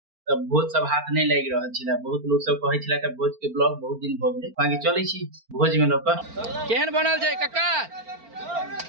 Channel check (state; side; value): late; left; 4.4 ms